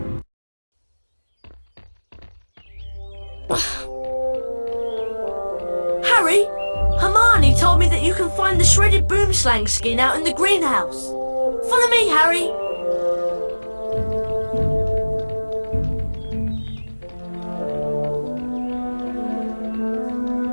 Harry, Hermione told me that you can find the shredded boomslang skin out in the greenhouse. Follow me, Harry.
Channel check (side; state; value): both; inverted; correlation -1.00